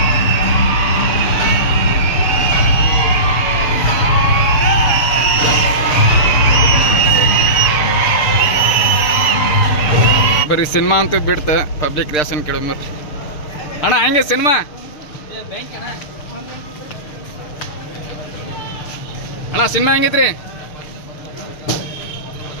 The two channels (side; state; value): right; late; 6.7 ms